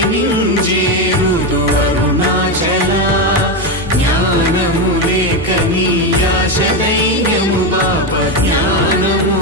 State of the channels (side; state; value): both; normal; correlation 0.11